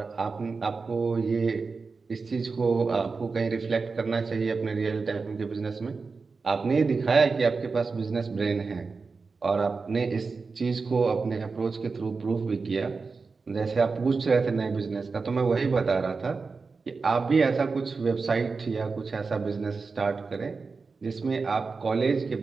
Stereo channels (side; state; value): left; quieter; 4.5 dB